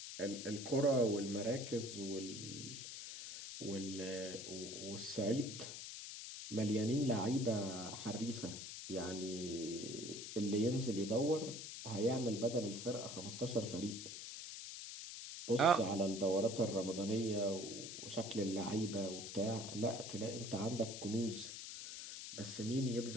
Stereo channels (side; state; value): left; noise; hiss, 8 dB below the sound